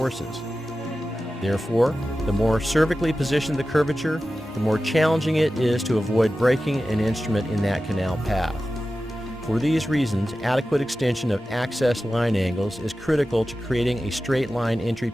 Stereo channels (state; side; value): normal; both; correlation 0.94